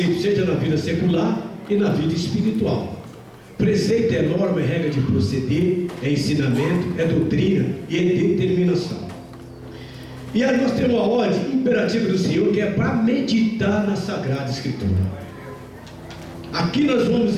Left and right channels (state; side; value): identical; both; correlation 1.00